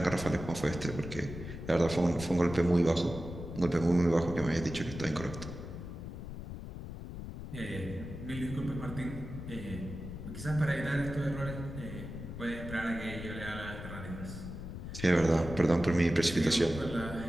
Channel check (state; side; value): noise; left; rumble, 9 dB below the sound